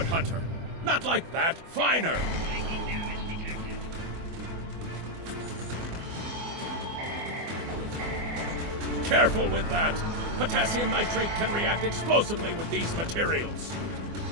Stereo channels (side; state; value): left; late; 24 ms